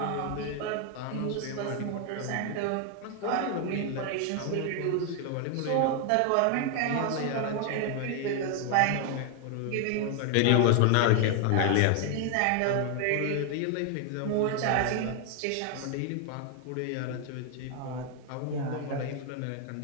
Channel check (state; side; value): different; both; correlation 0.00